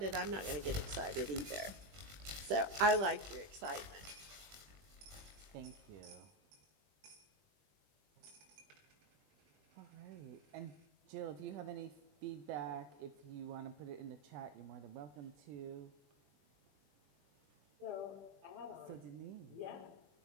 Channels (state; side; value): late; left; 20 ms